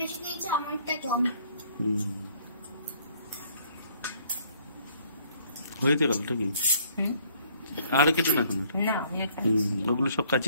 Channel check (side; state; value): both; inverted; correlation -0.62